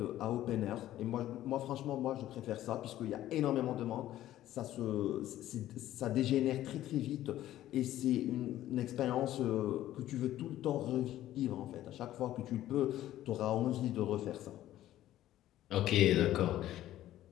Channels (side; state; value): right; quieter; 13.6 dB